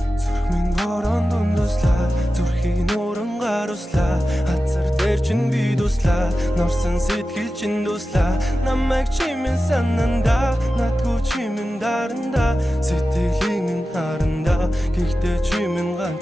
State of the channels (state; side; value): normal; both; correlation 0.93